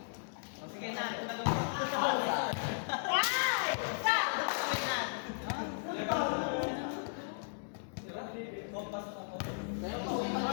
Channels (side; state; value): right; silent; digital silence